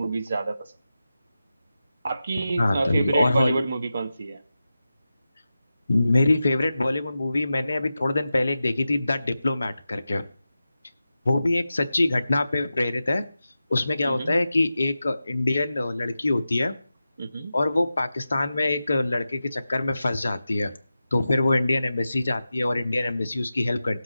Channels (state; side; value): inverted; both; correlation -0.92